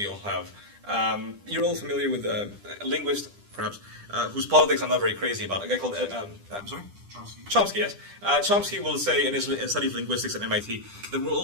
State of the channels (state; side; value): late; left; 10 ms